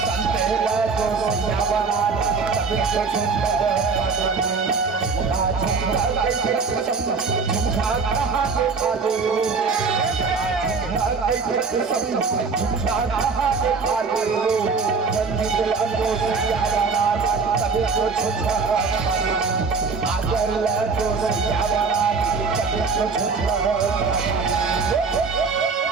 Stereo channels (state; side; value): quieter; left; 4.8 dB